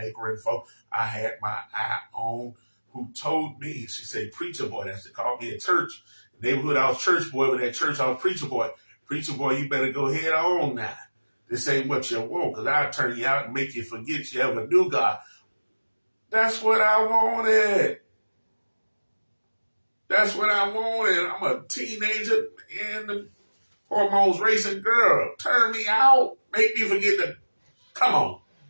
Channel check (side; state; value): both; inverted; correlation -1.00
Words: for. I had my eye on, who told me, she said, preacher boy. That's what they called me at church. The neighborhood, I was church boy, but at church, I was preacher boy. Preacher boy, you better go head on now. This ain't what you want, because I'll turn you out and make you forget you ever knew God. That's what I wanted. That's what I wanted. I'm a teenager and the hormones racing girl. Turn me out. Make me forget to, come on.